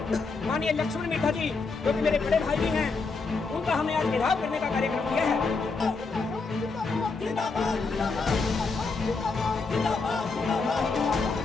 माननीय लक्ष्मण मिर्धा जी, जो कि मेरे बड़े भाई भी हैं, उनका हमने आज घेराव करने का कार्यक्रम किया है।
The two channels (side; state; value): right; quieter; 4.2 dB